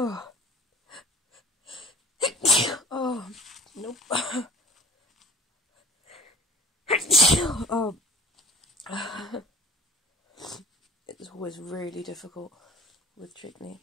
Oh, nope. Oh. It's always really difficult with chickpea.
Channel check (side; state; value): both; normal; correlation 0.46